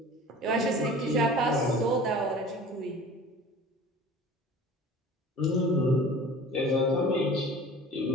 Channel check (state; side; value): normal; both; correlation 0.43